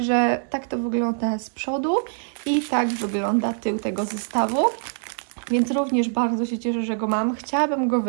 tak to wygląda z przodu i tak wygląda tył tego zestawu. Więc również bardzo się cieszę, że go mam. Chciałabym go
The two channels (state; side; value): silent; left; digital silence